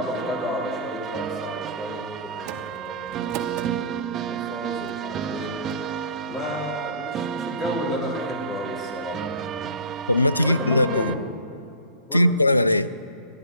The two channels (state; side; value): inverted; both; correlation -0.38